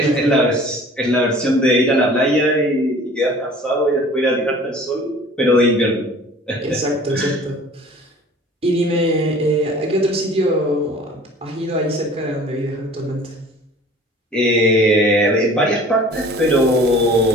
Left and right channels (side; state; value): both; normal; correlation 0.47